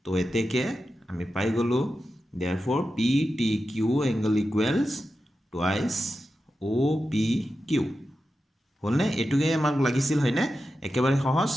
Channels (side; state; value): both; normal; correlation 0.91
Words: তো এতেকে আমি পাই গ'লোঁ therefore p t q angle equals twice o p q হলনে এটুকে আমাক লাগিছিল হয়নে একেবাৰে সহজ